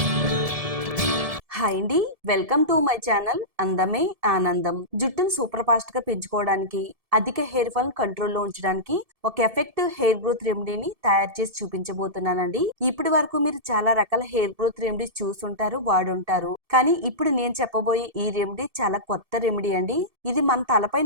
హాయ్ అండి, వెల్కమ్ టు మై ఛానల్ అందమే ఆనందం. జుట్టును సూపర్ ఫాస్ట్ గా పెంచుకోవడానికి, అధిక హెయిర్ ఫాల్ కంట్రోల్లో ఉంచడానికి ఒక ఎఫెక్టివ్ హెయిర్ గ్రోత్ రెమెడీని తయారు చేసి చూపించబోతున్నానండి. ఇప్పటి వరకు మీరు చాలా రకాల హెయిర్ గ్రోత్ రెమెడీస్ చూసుంటారు, వాడుంటారు. కానీ ఇప్పుడు నేను చెప్పబోయే ఈ రెమెడీ చాలా కొత్త రెమెడీ అండి. ఇది మన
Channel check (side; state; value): left; late; 1.7 ms